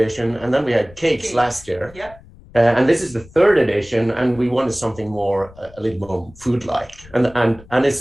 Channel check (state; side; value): noise; left; rumble, 22 dB below the sound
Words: and then we had cakes last year. Yeah. And this is the third edition, and we wanted something more a little more food-like. And